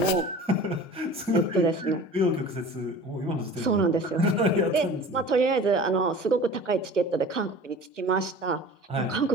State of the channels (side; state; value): both; normal; correlation 0.41